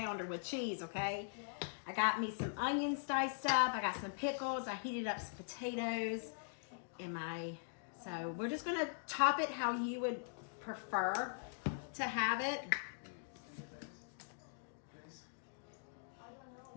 with cheese, okay? I got me some onions diced up. I got some pickles. I heated up some potatoes. So we're just gonna top it how you would prefer to have it.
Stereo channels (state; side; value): silent; right; digital silence